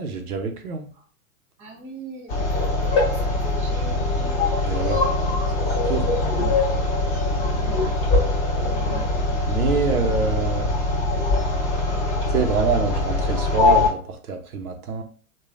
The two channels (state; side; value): normal; both; correlation 0.13